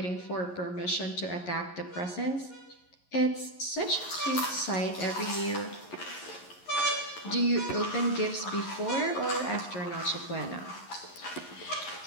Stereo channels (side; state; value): right; late; 11 ms